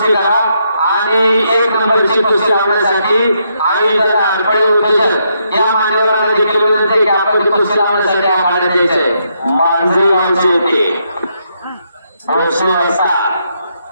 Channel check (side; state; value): both; inverted; correlation -0.77